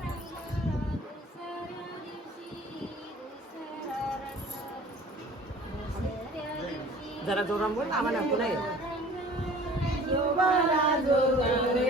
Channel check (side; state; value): both; normal; correlation 0.47